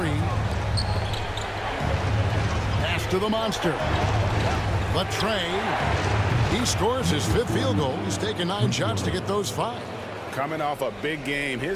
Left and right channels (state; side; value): identical; both; correlation 1.00